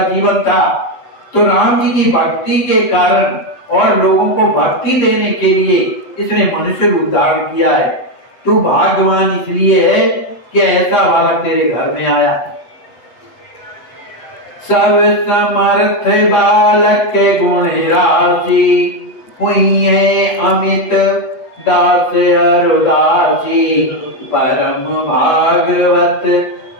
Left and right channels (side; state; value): right; late; 8.2 ms